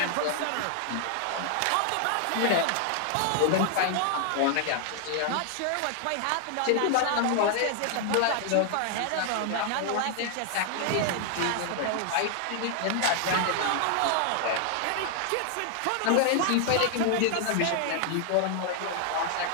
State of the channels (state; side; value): different; both; correlation 0.00